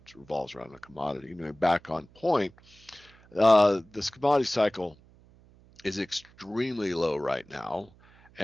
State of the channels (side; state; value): right; noise; hum, 27 dB below the sound